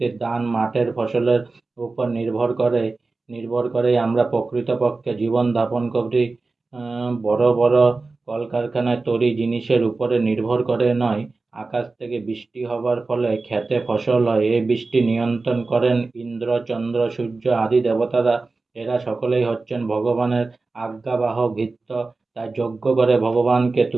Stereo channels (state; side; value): quieter; left; 3.7 dB